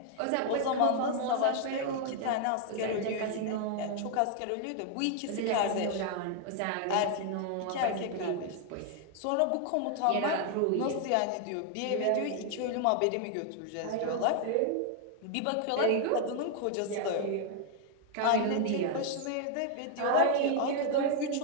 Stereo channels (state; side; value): different; both; correlation 0.00